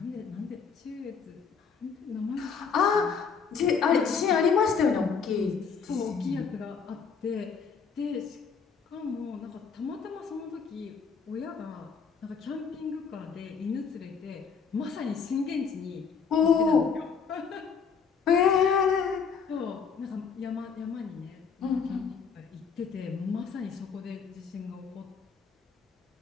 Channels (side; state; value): right; quieter; 6.0 dB